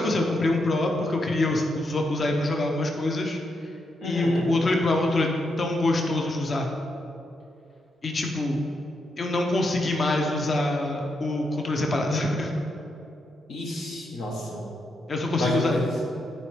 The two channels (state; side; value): normal; both; correlation 0.82